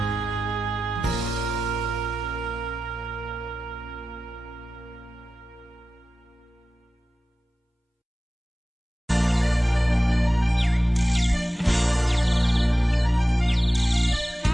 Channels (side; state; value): both; normal; correlation 0.95